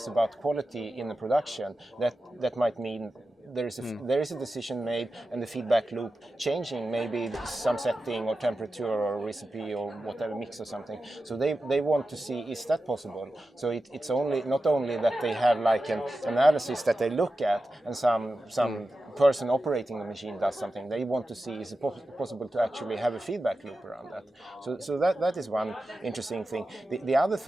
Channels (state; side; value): normal; both; correlation 0.92